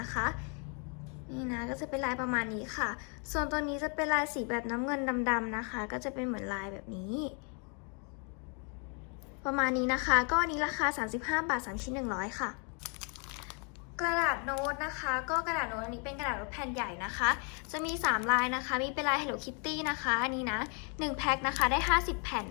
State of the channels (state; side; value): quieter; right; 37.7 dB